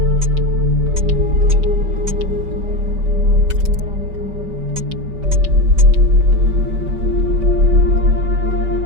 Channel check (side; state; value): left; late; 5.2 ms